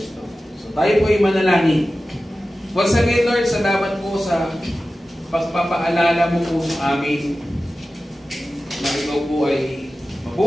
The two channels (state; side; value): normal; both; correlation 0.95